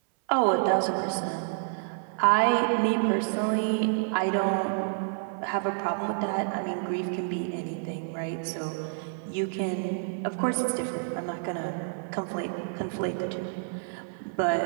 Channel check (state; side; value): silent; left; 59 dB below the other